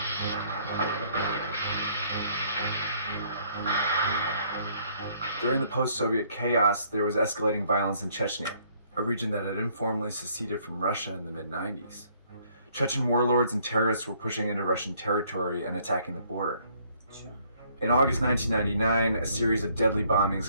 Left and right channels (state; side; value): inverted; both; correlation -0.64